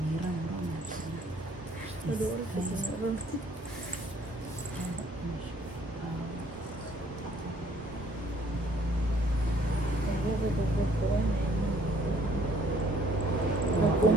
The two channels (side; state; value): both; normal; correlation 0.61